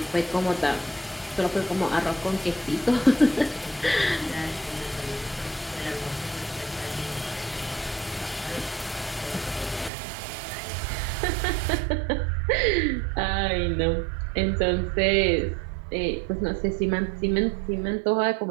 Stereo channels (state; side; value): drops out; left; at 9.9 s